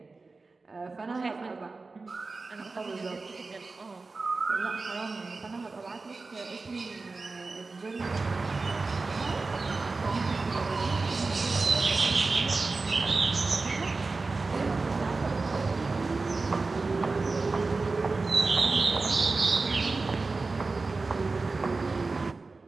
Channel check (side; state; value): left; quieter; 3.8 dB